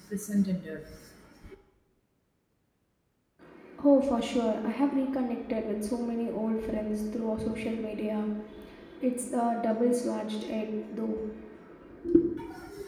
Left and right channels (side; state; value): both; identical; correlation 1.00